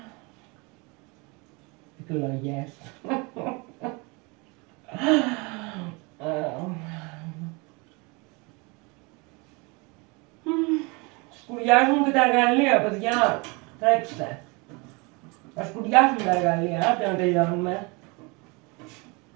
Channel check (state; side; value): quieter; left; 28.5 dB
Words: Εκλογές. Σκουριάζουν και τα εργαλεία, παιδιά. Τρέξτε. Θα σκουριάσουν τα εργαλεία, άντε να τελειώνουμε.